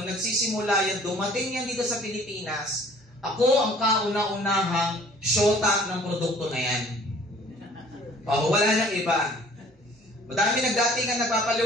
nagsisimula yan, dumating yan dito sa Pilipinas, ako ang kauna-unahang shota ng produkto na yan. Wala nang iba. Madami nagdating ang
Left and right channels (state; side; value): normal; both; correlation 0.53